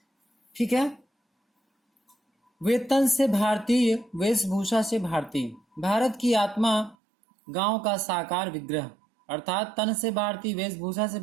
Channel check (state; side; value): drops out; left; at 7.0 s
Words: ठीक है। वे तन से भारतीय, वेशभूषा से भारतीय, भारत की आत्मा, गांव का साकार विग्रह। अर्थात तन से भारतीय, वेशभूषा से